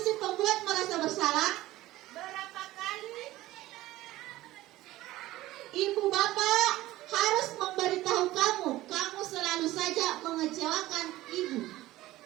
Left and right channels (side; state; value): left; quieter; 16.6 dB